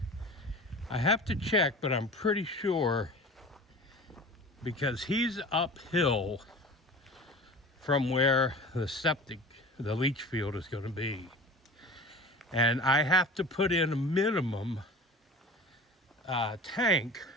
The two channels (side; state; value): both; normal; correlation 0.37